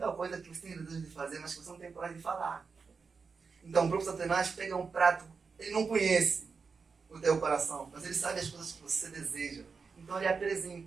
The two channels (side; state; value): left; quieter; 5.1 dB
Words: coisa que você tem desejo de fazer, mas que você não tem coragem de falar. Então o próprio Satanás pega um prato, ele não conhece o teu coração, mas ele sabe as coisas que você deseja. Então ele